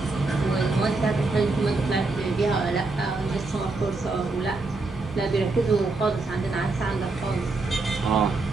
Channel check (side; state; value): left; quieter; 3.5 dB